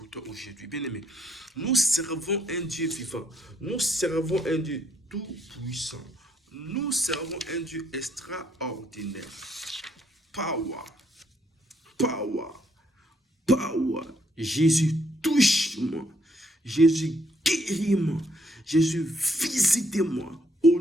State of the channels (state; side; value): normal; both; correlation 0.71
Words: toi aujourd'hui. Bien-aimé, nous servons un Dieu vivant. Nous servons un Dieu tout-puissant. Nous servons un Dieu extraordinaire. Power. Power. Power. Jésus, touche-moi. Jésus, guéris-moi. Jésus, visitez-moi.